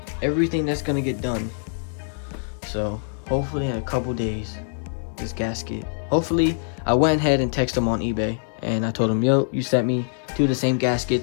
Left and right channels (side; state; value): right; silent; digital silence